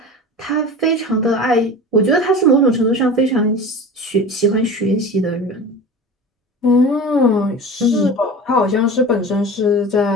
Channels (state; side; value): normal; both; correlation 0.34